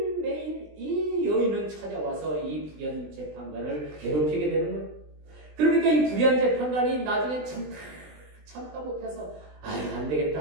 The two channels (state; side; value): late; left; 20 ms